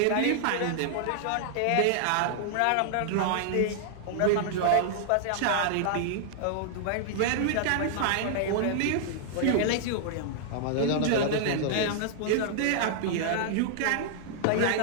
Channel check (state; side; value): different; both; correlation -0.01